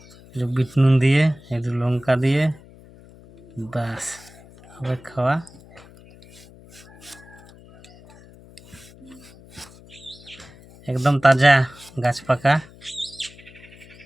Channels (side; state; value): left; noise; hum, 23 dB below the sound